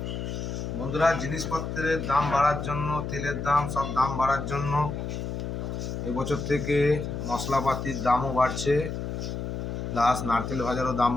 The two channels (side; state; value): left; noise; hum, 4 dB below the sound